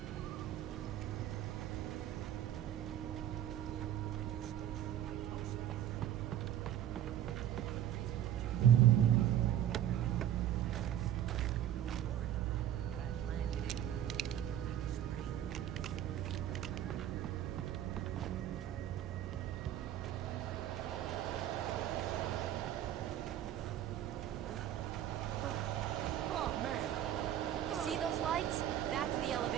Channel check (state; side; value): quieter; left; 11.2 dB